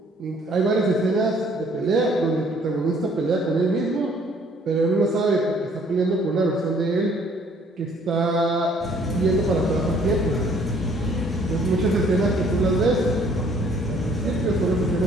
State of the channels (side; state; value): both; normal; correlation 0.60